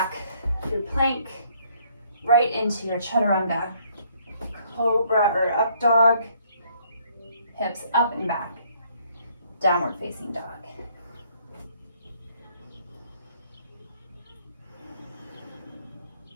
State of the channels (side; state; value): both; inverted; correlation -0.65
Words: through plank, right into your chaturanga. Cobra or up dog, hips up and back. Downward facing dog.